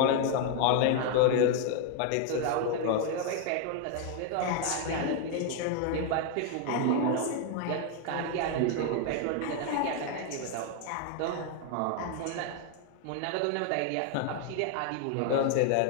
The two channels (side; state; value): both; different; correlation 0.00